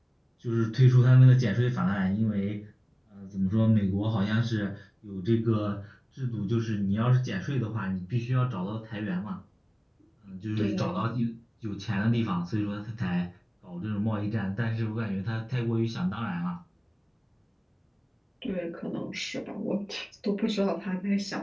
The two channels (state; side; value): identical; both; correlation 1.00